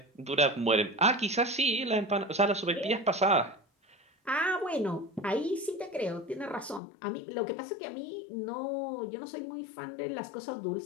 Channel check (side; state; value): right; drops out; at 6.8 s